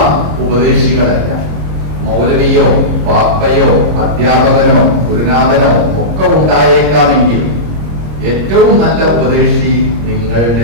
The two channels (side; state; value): left; late; 26 ms